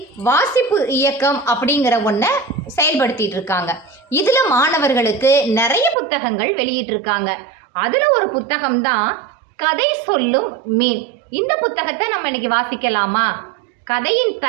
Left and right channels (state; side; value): drops out; left; at 6.0 s